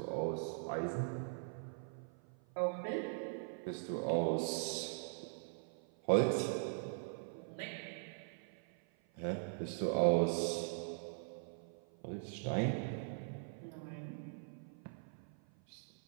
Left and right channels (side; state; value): left; silent; 50 dB below the other